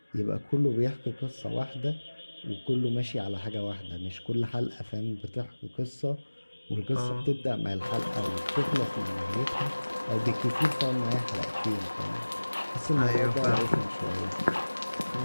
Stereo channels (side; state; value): both; inverted; correlation -1.00